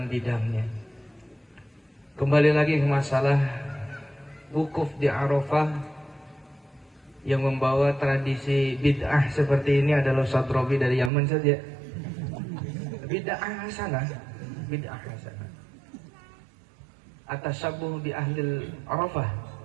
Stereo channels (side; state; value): left; drops out; at 11.1 s